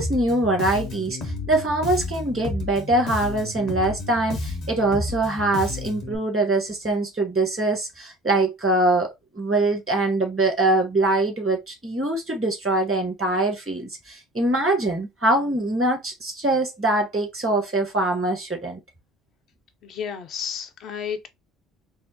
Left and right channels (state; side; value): normal; both; correlation 0.44